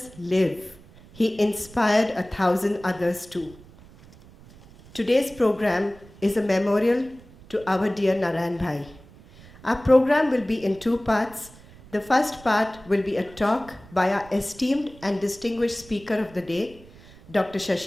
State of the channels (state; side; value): noise; right; rumble, 22 dB below the sound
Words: live, he inspired 1,000 others too. Today's program is a memorial to our dear Narayan Bhai. Our program will be in two parts. The first part will be a talk by our esteemed and distinguished speaker of the day, Dr.